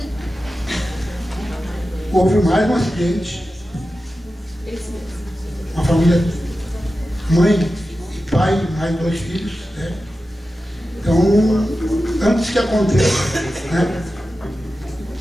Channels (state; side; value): normal; both; correlation 0.93